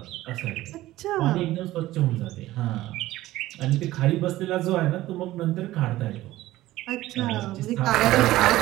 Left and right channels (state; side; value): quieter; left; 16.2 dB